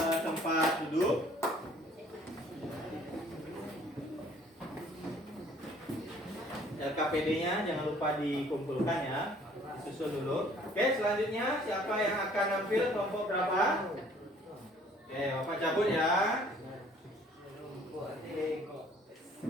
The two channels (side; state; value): both; normal; correlation 0.57